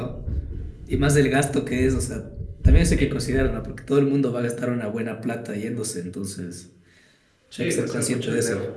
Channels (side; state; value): both; identical; correlation 1.00